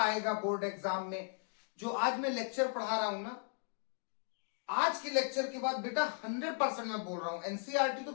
बोर्ड एग्जाम में? जो आज मैं लेक्चर पढ़ा रहा हूं ना, आज के लेक्चर के बाद बेटा 100% मैं बोल रहा हूं, एनसीईआरटी तो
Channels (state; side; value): silent; right; 53 dB below the other